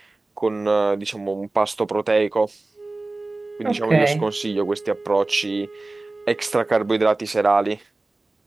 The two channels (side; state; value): left; quieter; 3.1 dB